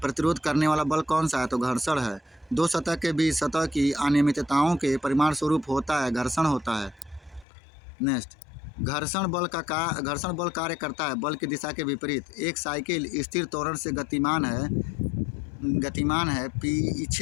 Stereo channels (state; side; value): drops out; right; at 7.5 s